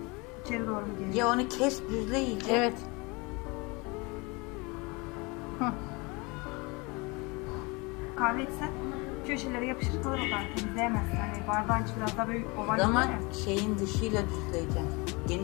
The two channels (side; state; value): right; quieter; 27.1 dB